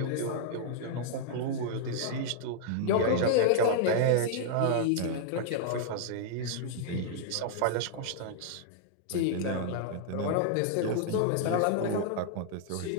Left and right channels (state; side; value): different; both; correlation -0.01